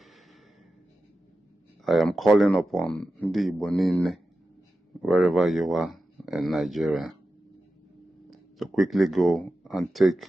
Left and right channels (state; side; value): normal; both; correlation 0.92